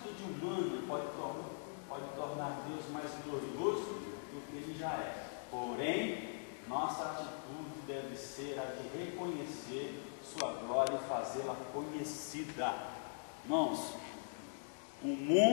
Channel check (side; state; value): right; silent; digital silence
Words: humana pode tornar Deus mais glorioso do que Ele já é. Porém, nossa atitude deve ser a de reconhecer sua glória e fazê-la conhecida. Irmãos, o